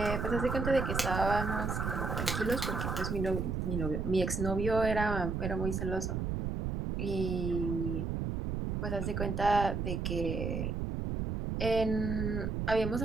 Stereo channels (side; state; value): right; noise; rumble, 2 dB below the sound